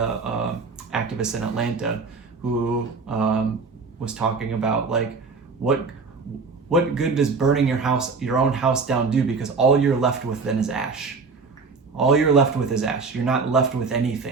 activist in Atlanta who was talking about like what good does burning your own house down do, because all you're left with then is ash. All you're left with is ash. You're not left with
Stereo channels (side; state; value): left; quieter; 4.5 dB